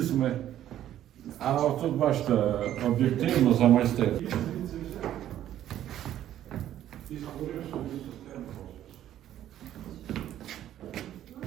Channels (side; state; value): left; quieter; 11.9 dB